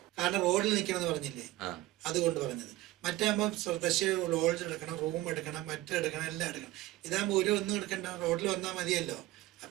കാരണം റോഡിൽ നിൽക്കണമെന്ന് പറഞ്ഞില്ലേ, അതുകൊണ്ട് പറഞ്ഞത്. മറ്റാകുമ്പോൾ ലോഡ്ജ് എടുക്കണം, റൂം എടുക്കണം, മറ്റെടുക്കണം, എല്ലാം എടുക്കണം. ഇതാകുമ്പോൾ ഒന്നും എടുക്കണ്ട, റോഡിൽ വന്നാൽ മതിയല്ലോ.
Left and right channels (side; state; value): left; quieter; 16.8 dB